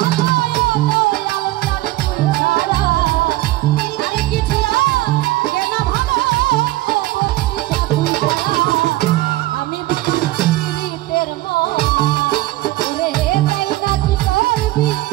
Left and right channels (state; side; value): quieter; left; 17.5 dB